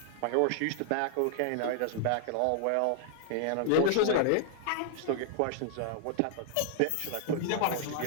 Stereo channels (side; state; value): both; different; correlation -0.01